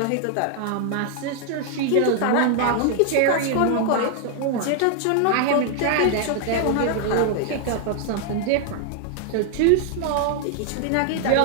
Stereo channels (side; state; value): both; different; correlation 0.00